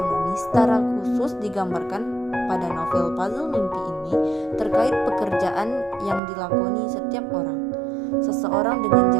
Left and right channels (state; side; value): drops out; left; at 6.2 s